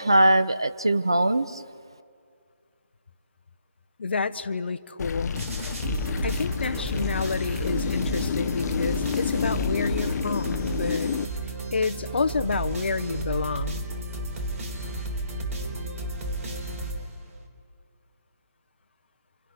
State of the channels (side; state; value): both; inverted; correlation -0.72